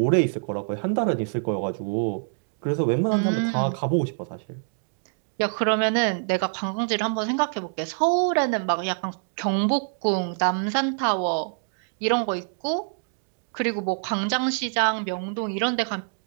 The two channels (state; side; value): silent; left; digital silence